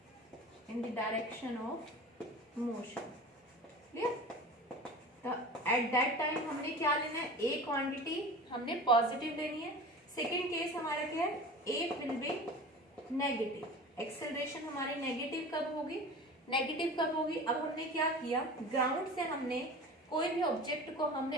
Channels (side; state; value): both; normal; correlation 0.36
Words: in the direction of motion. Clear? तो at that time हमने क्या लेना है, ए quantity हमने positive लेनी है। Second case हमारा क्या है, ए विल बी नेगेटिव, एक्सेलरेशन हमारी नेगेटिव कब होगी, नेगेटिव कब होगी, अब हमने क्या किया, ग्राउंड से हमने कोई भी ऑब्जेक्ट को